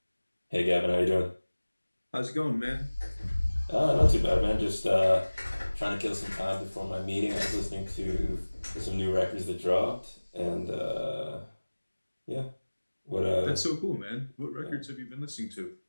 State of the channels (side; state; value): both; inverted; correlation -1.00